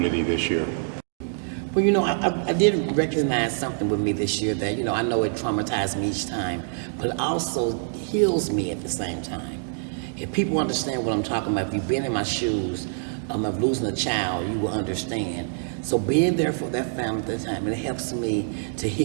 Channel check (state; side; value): silent; left; 61 dB below the other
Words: this year? Well, you know, I did recognize something with me this year that, you know, I know it traumatized me each time, but it also heals me at the same time. If people understand what I'm talking about, if you've been in my shoes of losing a child, you will understand. So being there for that family at the time, it helps me to